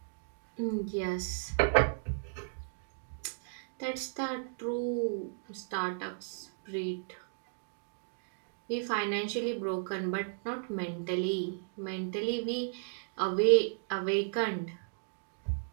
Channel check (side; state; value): left; silent; digital silence